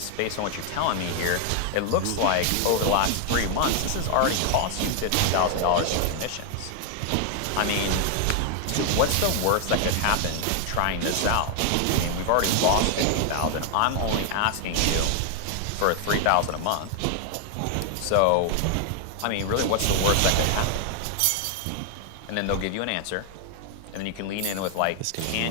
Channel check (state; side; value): different; both; correlation 0.00